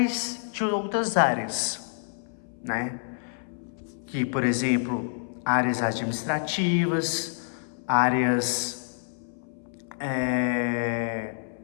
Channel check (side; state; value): right; silent; 60 dB below the other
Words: de outras áreas, né? Que, por exemplo, áreas administrativas, áreas